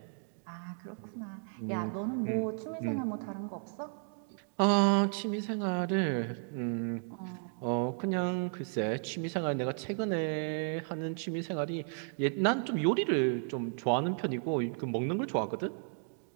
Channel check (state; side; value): silent; left; 55 dB below the other